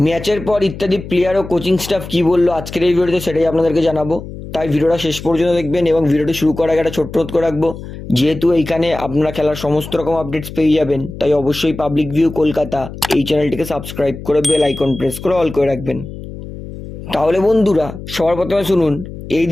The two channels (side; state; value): left; noise; hum, 12 dB below the sound